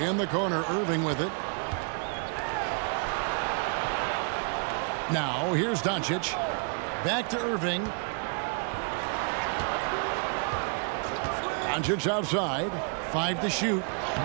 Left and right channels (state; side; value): quieter; left; 39.9 dB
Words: In the corner, Irving with it. Now, here's Doncic. Back to Irving. Doncic outside. 5 to shoot.